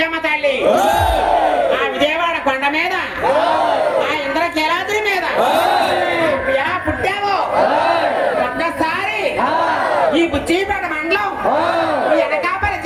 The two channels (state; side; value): identical; both; correlation 1.00